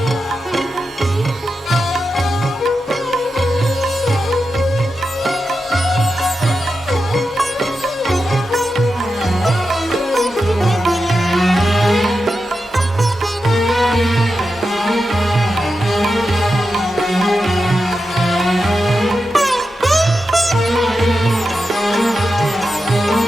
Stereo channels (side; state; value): both; normal; correlation 0.89